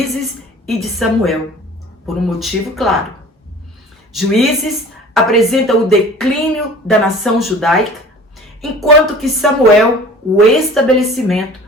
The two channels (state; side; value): normal; both; correlation 0.44